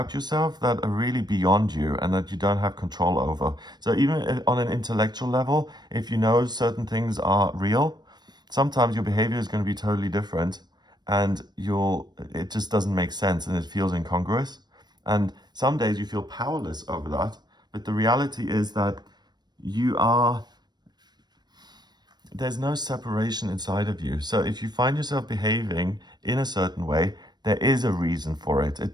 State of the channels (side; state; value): left; late; 0.20 ms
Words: yourself that are really beyond you and that you don't have control over. So even on an intellectual level, if you know certain things are real, sometimes your behavior is going to be totally different, and it just doesn't make sense and it feels incongruous. And some days you feel powerless over that, but the reality is that there's no separation inside of you. So if you find yourself behaving in a certain way, there is a reason for it.